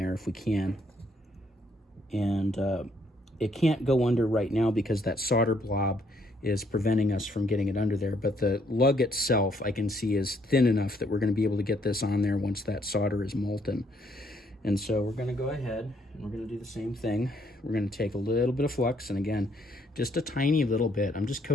if we can. And it can't go under right now because that solder blob is preventing us from getting it under there. But the lug itself, I can see, is thin enough that we're going to be able to get this on there once that solder is molten. And so we're going to go ahead and we're going to do the same thing. We're going to take a little bit of flux, and again, just a tiny little bit. I'm just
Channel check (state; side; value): normal; both; correlation 0.70